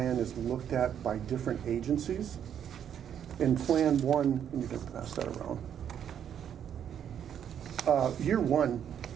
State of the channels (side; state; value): left; quieter; 9.1 dB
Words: is looked at by different agencies. In Plan 1, you can pass that around. Year 1